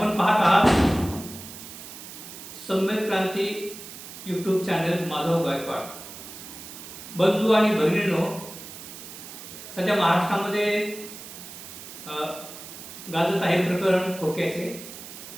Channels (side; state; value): right; noise; hiss, 13 dB below the sound